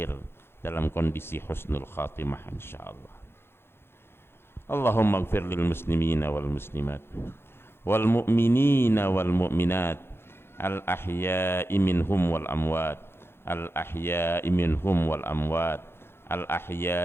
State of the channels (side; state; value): right; late; 0.11 ms